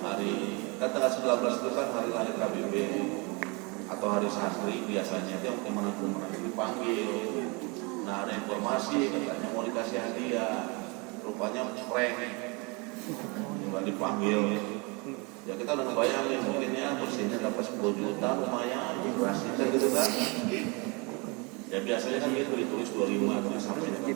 kan tanggal 19 itu kan hari lahir KBB atau hari santri, biasanya itu yang kemana dipanggil. Nah ada informasi katanya mau dikasih hadiah, rupanya prank, nggak dipanggil. Ya kita udah ngebayangin mungkin ya bersihnya dapat 10 juta lumayan, berhasilnya gitu kan. Ya biasanya kan gitu ditulis 25 tapi sampai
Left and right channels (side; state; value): left; quieter; 29.7 dB